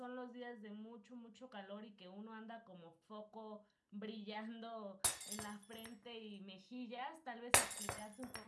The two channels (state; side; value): identical; both; correlation 1.00